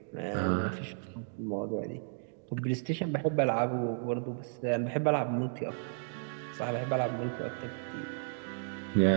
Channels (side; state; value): left; silent; digital silence